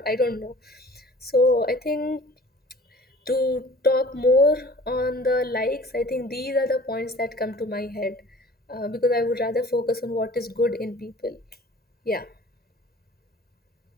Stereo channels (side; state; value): both; normal; correlation 0.47